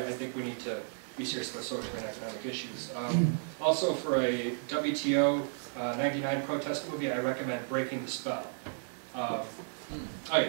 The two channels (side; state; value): left; silent; 56 dB below the other